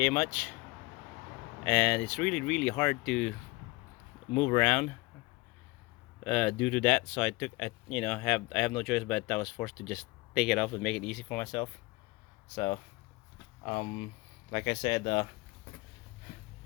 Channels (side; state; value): right; quieter; 23.4 dB